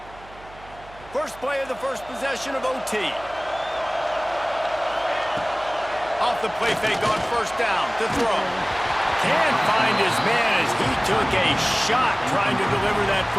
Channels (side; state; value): right; noise; hum, 21 dB below the sound